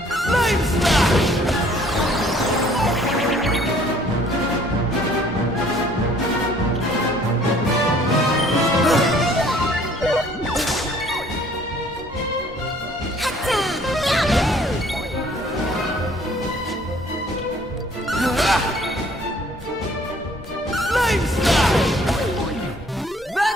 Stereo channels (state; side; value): normal; both; correlation 0.58